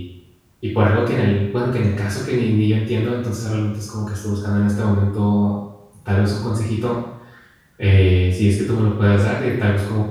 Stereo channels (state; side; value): identical; both; correlation 1.00